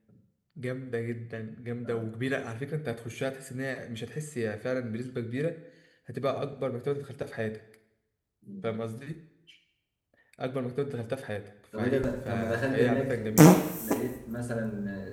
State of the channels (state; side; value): identical; both; correlation 1.00